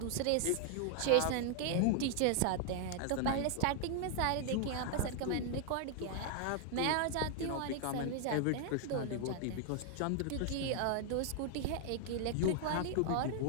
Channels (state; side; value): different; both; correlation 0.00